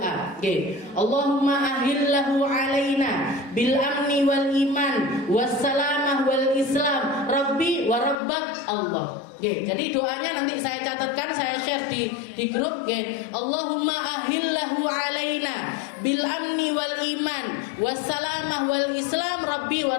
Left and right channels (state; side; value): drops out; right; at 8.2 s